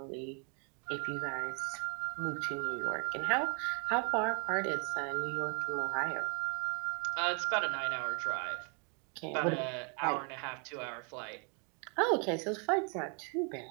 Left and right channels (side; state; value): left; quieter; 37.8 dB